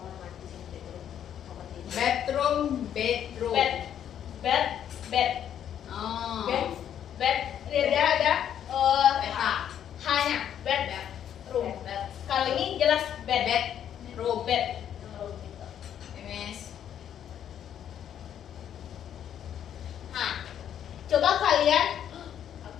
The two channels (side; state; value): right; quieter; 9.7 dB